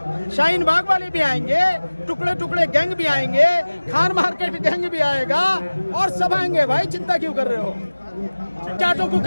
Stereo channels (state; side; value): inverted; both; correlation -1.00